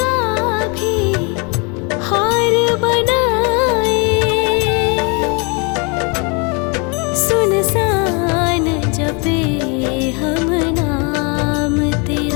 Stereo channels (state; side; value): quieter; right; 32.5 dB